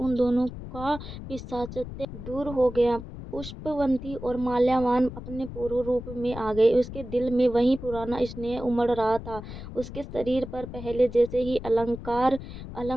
दोनों का पिशाचत्व दूर हो गया। पुष्पवंती और माल्यावान अपने पूर्व रूप में आ गए। उसके दिल में वही पुराना स्नेह उमड़ रहा था। उसके शरीर पर पहले जैसे ही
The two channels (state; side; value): noise; left; rumble, 11 dB below the sound